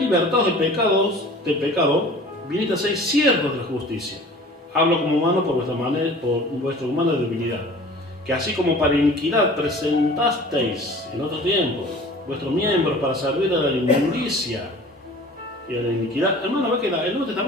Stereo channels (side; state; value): both; normal; correlation 0.44